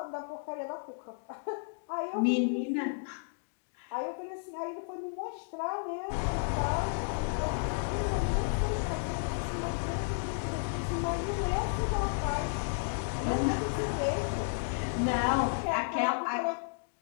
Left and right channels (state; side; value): silent; right; digital silence